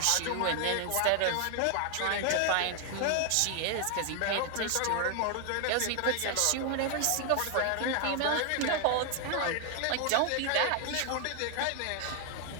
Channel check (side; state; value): both; different; correlation 0.00